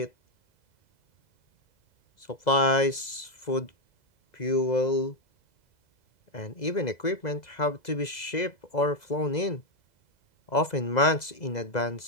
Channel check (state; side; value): late; right; 2.0 ms